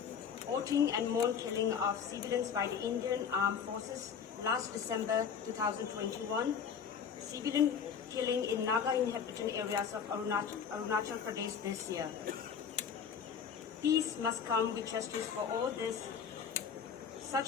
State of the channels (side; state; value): right; quieter; 7.1 dB